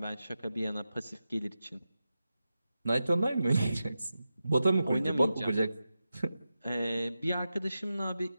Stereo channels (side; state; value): both; inverted; correlation -0.91